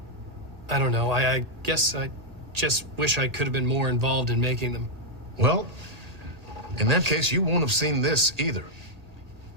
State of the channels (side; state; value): left; late; 1.8 ms